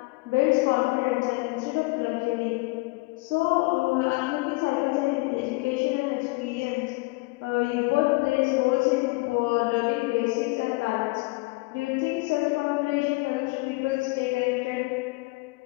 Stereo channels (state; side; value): quieter; right; 25.3 dB